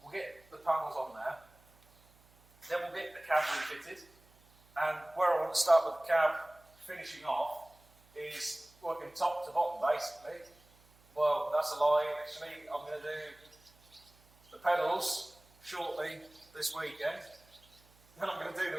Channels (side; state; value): right; noise; hum, 29 dB below the sound